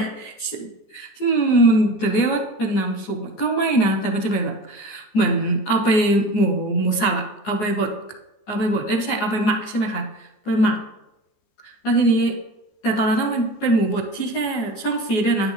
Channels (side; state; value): right; late; 14 ms